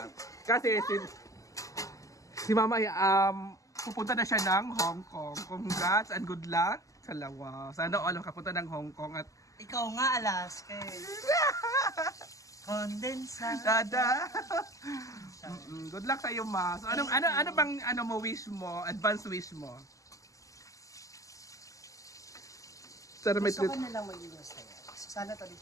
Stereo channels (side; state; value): right; late; 0.16 ms